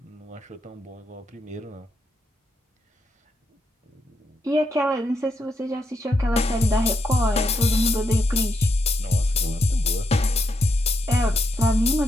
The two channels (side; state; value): both; normal; correlation 0.80